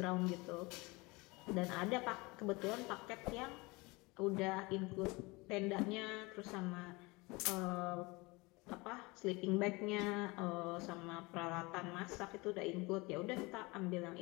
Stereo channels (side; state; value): right; quieter; 24.6 dB